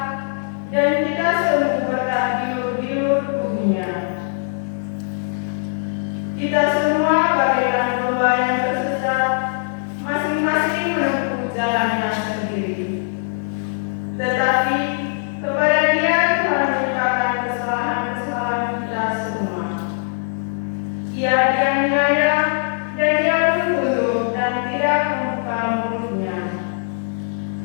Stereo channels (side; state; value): right; silent; 65 dB below the other